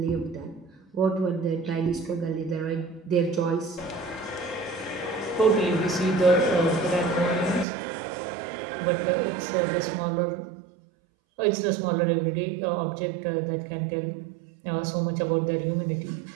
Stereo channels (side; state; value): left; drops out; at 7.7 s